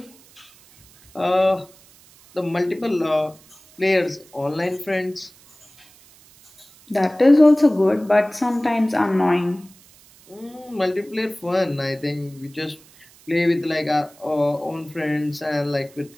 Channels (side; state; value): right; noise; hiss, 26 dB below the sound